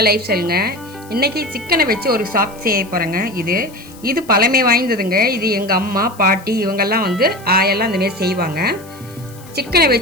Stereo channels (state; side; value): noise; left; hiss, 23 dB below the sound